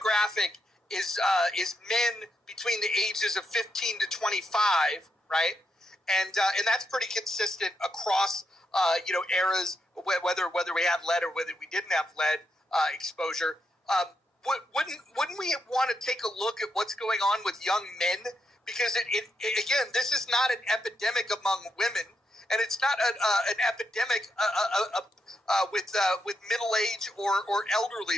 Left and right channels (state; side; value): normal; both; correlation 0.82